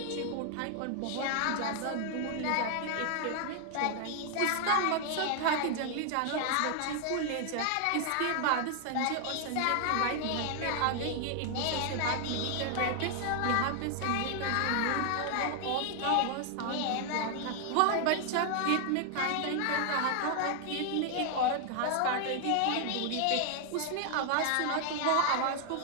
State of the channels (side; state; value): both; different; correlation 0.00